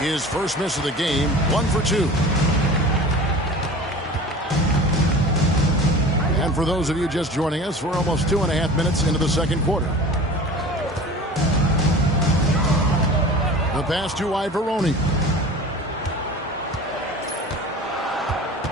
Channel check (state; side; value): normal; both; correlation 0.38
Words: first miss of the game, 1 for 2. And for those of you just joining us, we're almost 2.5 minutes into the second quarter. The pass to Ivoroni.